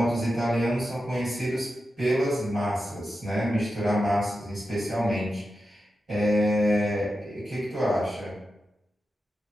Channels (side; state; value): both; normal; correlation 0.90